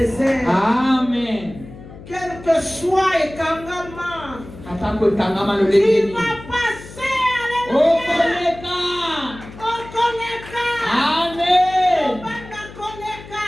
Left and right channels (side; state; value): left; noise; hum, 16 dB below the sound